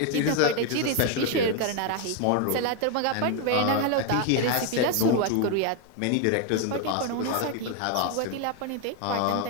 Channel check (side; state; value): both; different; correlation 0.01